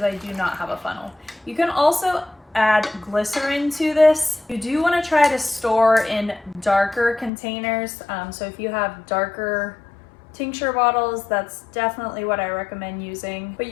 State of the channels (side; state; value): right; drops out; at 7.3 s